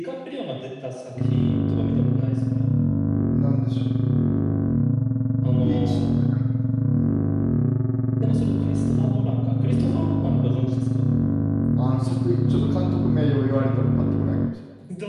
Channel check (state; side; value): identical; both; correlation 1.00